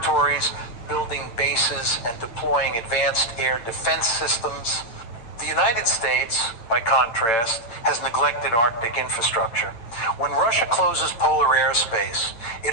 building bases and deploying advanced air defense systems. The United States, by contrast, has neglected Arctic infrastructure. When Russia closes polar airspace,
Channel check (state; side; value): late; right; 8.9 ms